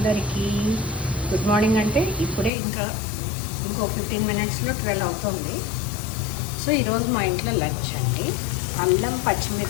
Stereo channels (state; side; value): drops out; right; at 2.5 s